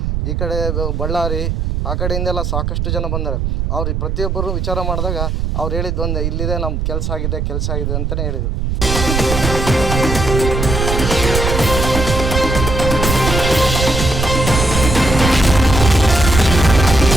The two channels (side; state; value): right; noise; rumble, 1 dB below the sound